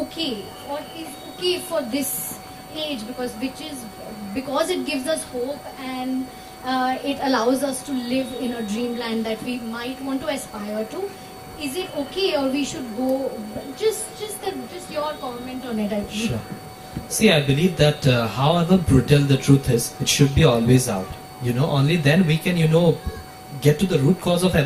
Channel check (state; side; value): identical; both; correlation 1.00